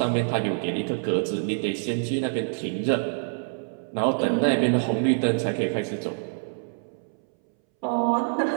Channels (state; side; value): silent; left; 61 dB below the other